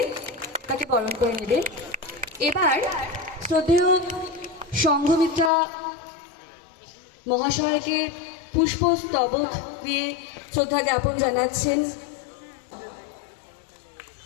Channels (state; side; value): drops out; right; at 5.5 s